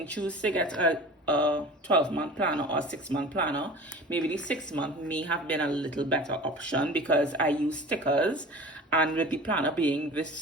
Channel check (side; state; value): both; normal; correlation 0.39